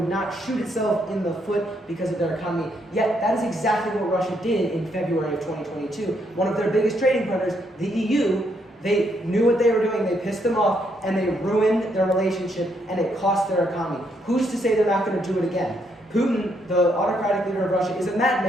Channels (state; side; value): normal; both; correlation 0.75